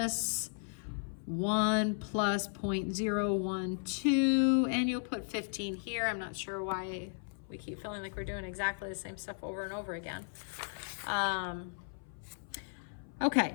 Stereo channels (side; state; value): right; silent; 54 dB below the other